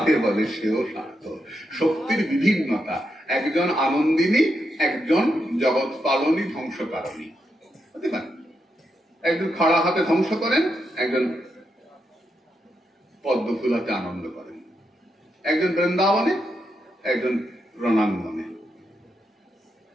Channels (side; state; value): both; normal; correlation 0.83